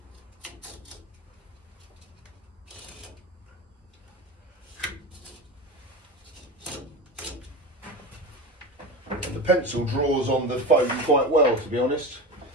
The pencil draws on the foam quite well, to be honest.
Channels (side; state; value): both; normal; correlation 0.25